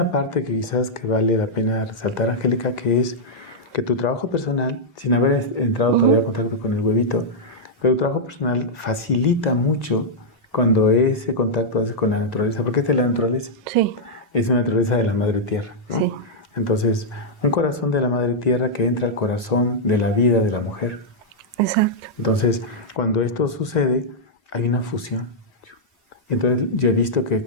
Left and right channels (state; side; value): normal; both; correlation -0.07